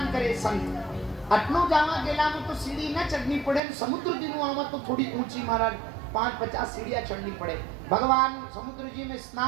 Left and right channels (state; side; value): drops out; left; at 3.6 s